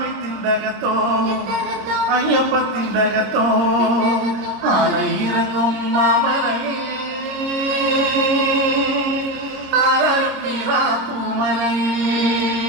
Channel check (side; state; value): left; late; 26 ms